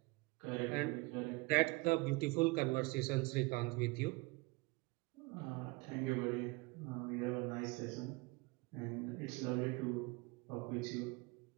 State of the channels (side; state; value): left; quieter; 25.1 dB